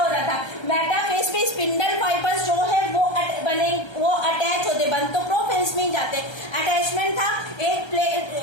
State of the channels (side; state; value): right; late; 1.3 ms